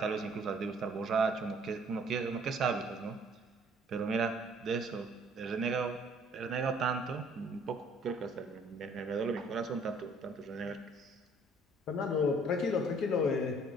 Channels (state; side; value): normal; both; correlation 0.59